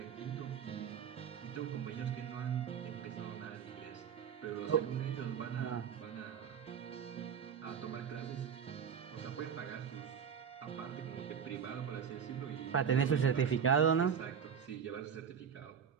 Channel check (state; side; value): quieter; left; 7.5 dB